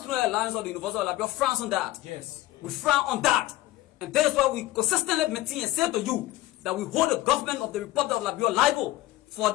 Alliance of the University of Liberia frowns on that. Yes. We frown on that. And that is why we consistently maintain and say to you that we hold the government of the Republic of Liberia liable for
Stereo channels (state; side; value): quieter; right; 16.8 dB